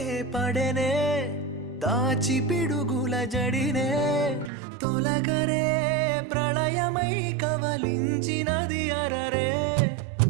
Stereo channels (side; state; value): left; drops out; at 4.5 s